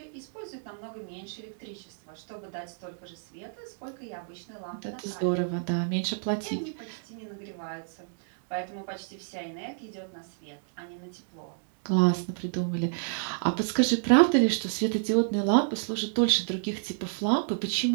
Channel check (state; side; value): silent; left; digital silence